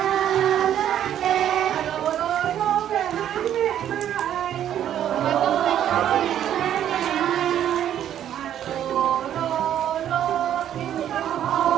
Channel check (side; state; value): left; quieter; 10.6 dB